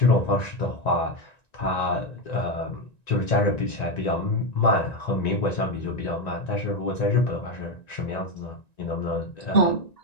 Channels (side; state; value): right; late; 1.9 ms